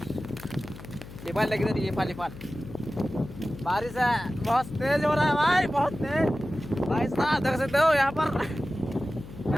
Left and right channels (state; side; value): noise; left; hum, 15 dB below the sound